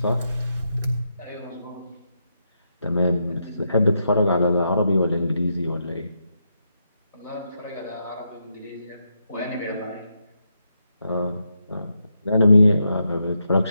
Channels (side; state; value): both; inverted; correlation -0.83